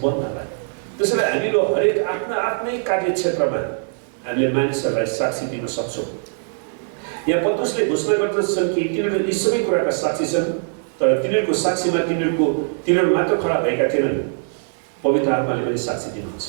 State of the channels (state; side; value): silent; left; digital silence